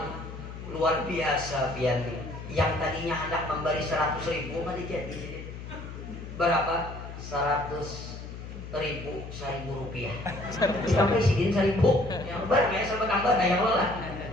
luar biasa pian. Yang tadinya hendak memberi 100.000 pada jadi berapa? 100.000 rupiah. Sampai sidin 1.000. Yang banyak sampai tambah daya lelah.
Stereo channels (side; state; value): left; noise; hum, 11 dB below the sound